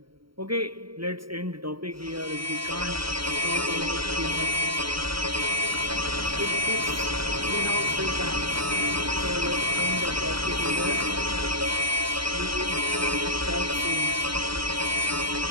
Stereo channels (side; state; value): left; late; 0.74 ms